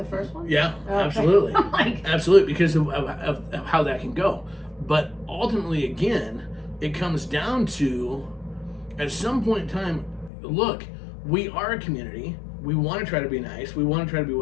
first one? Yeah, okay. Absolutely. Absolutely, because of how that can go. But ultimately, again, it comes down to, at some point in time, look, we are a community. We want to try to be nice. We want to try to be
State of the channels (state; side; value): drops out; right; at 10.3 s